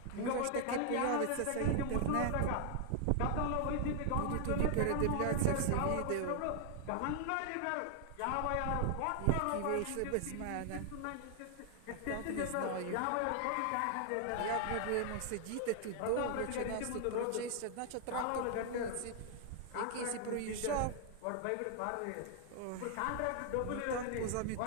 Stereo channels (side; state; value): both; different; correlation 0.00